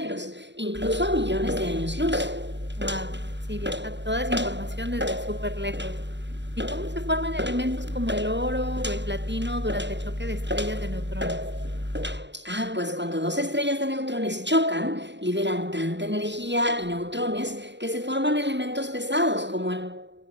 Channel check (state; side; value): late; left; 0.52 ms